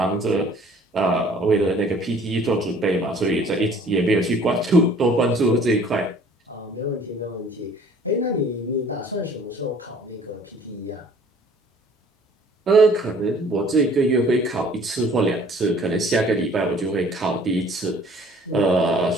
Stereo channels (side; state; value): both; normal; correlation 0.53